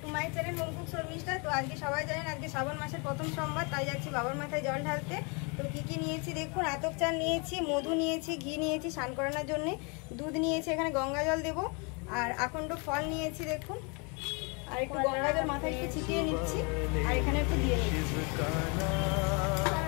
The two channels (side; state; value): right; quieter; 32.8 dB